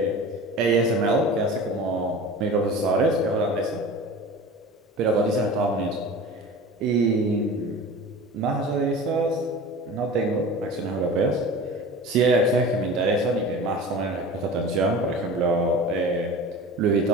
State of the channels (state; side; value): normal; both; correlation 0.36